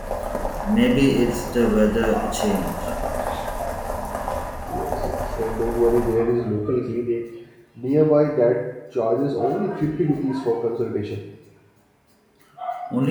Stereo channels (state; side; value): identical; both; correlation 1.00